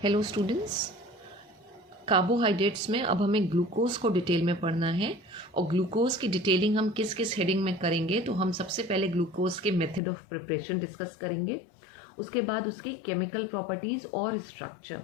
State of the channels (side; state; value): right; drops out; at 10.0 s